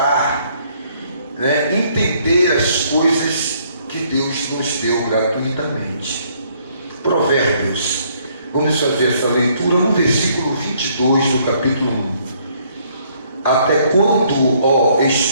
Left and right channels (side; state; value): both; inverted; correlation -0.66